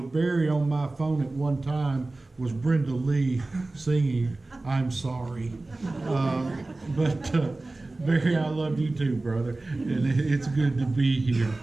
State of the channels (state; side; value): quieter; left; 3.1 dB